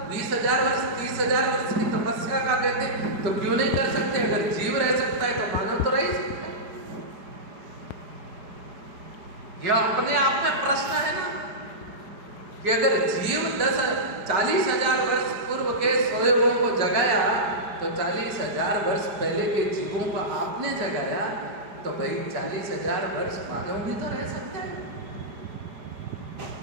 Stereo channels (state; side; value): late; left; 4.9 ms